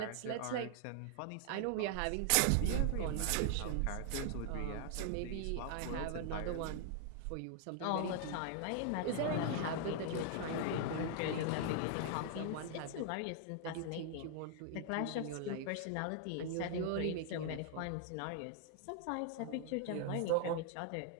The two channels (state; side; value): different; both; correlation 0.00